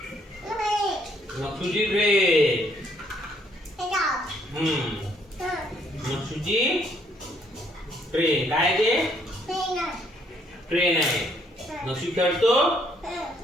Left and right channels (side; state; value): both; normal; correlation 0.67